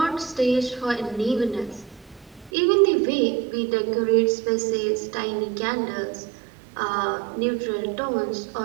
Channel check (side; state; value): left; drops out; at 2.5 s